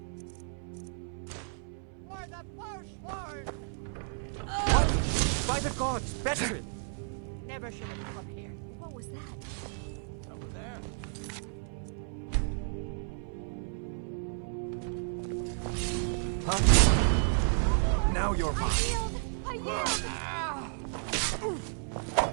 What? By the gods, Betrin! Never should have come up here. What was that? Over there. Huh? Now you're mine. I yield!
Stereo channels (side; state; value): left; silent; 56 dB below the other